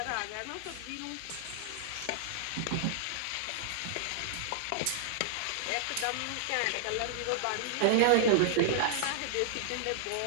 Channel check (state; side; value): different; both; correlation -0.01